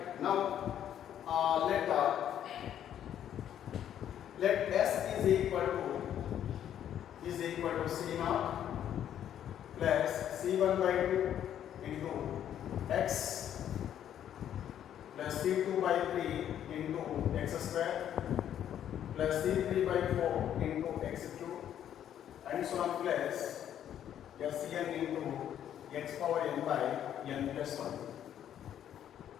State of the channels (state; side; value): quieter; right; 10.3 dB